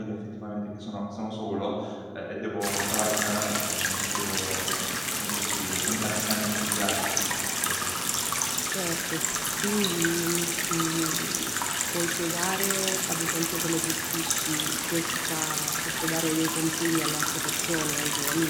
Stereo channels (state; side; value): identical; both; correlation 1.00